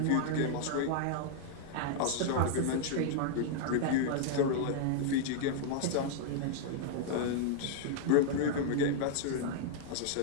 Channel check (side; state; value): both; different; correlation -0.01